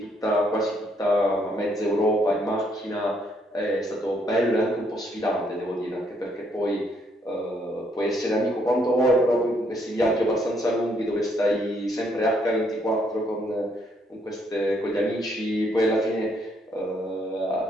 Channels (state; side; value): normal; both; correlation 0.71